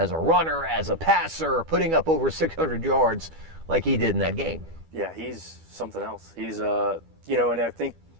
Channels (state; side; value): late; left; 12 ms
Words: a runner, as a passer, putting up over 600 yards like he did in that game. Yeah, he's something else. He's, and I think